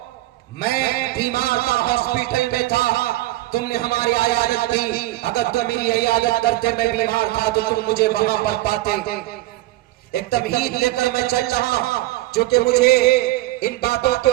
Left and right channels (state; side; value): quieter; left; 17.1 dB